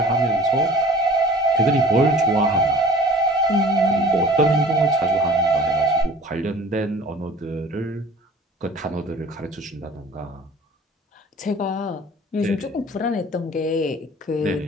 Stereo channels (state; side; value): normal; both; correlation 0.45